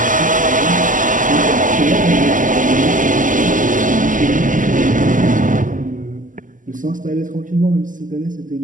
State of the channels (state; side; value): late; left; 0.38 ms